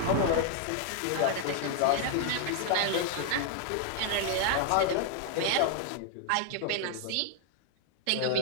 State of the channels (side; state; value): both; different; correlation 0.00